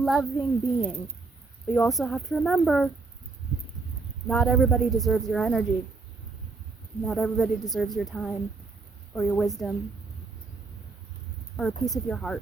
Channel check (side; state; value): left; quieter; 3.9 dB